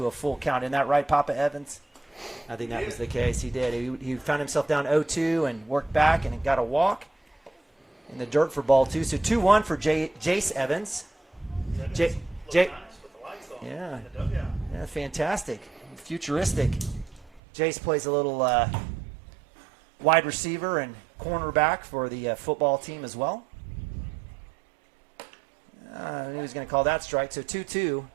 a full count. Isn't that right, Papa Evans? I think that was the case. He did. He found himself down 0-2 and worked back and got a walk in the dirt for ball 2. So 2-1 for Jace Evans. Yeah, fantastic. Futuristic. Jace plays a little wide receiver and cornerback for the football team as well. I knew he was going to call that strike. So 2-2.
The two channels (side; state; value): left; drops out; at 17.4 s